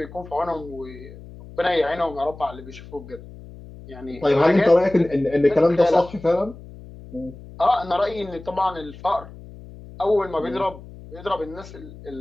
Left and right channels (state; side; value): noise; left; hum, 17 dB below the sound